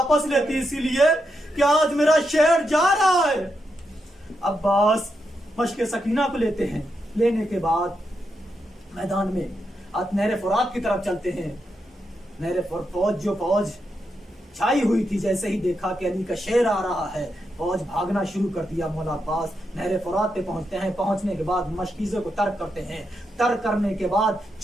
लेती, इसीलिए कि आज मेरा शेर जा रहा है। अब्बास मश्क सकीना को लेते हैं। लेने के बाद मैदान में नहर फुरात की तरफ चलते हैं। नहर फौज छाई हुई थी। जैसे ही देखा कि अली का शेर आ रहा है, फौज भागना शुरू कर दिया। मौला अब्बास नहर फुरात पे पहुंचते हैं। पहुंचने के बाद मशकीज़ों को तर्क करते हैं। तर्क करने के बाद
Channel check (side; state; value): both; normal; correlation 0.84